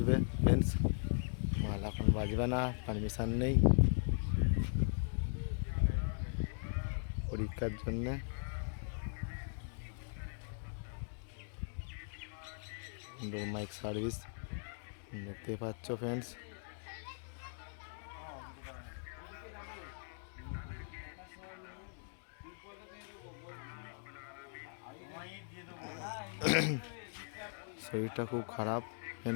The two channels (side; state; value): right; silent; digital silence